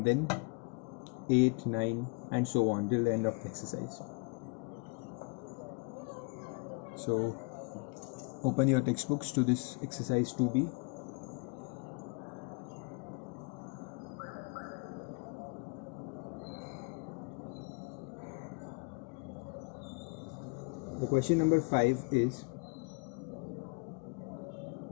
then 8, 9 and so on till the end of the exercise. So open your textbooks to this exercise 2b. The question number 5 is,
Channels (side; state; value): right; quieter; 32.3 dB